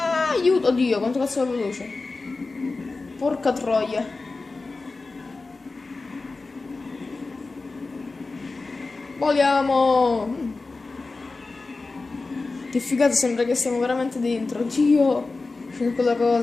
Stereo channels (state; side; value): quieter; right; 3.7 dB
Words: Aiuto, oddio, quanto cazzo è veloce. Porca troia. Voliamo. Che figata, sembra che siamo veramente dentro. Dio, c'è quella